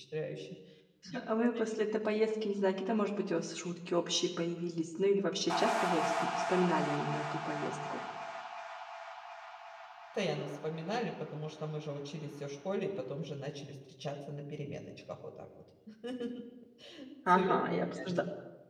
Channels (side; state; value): both; identical; correlation 1.00